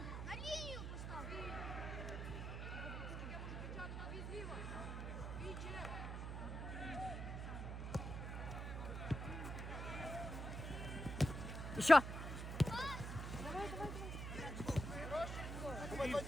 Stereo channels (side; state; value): right; noise; hum, 4 dB below the sound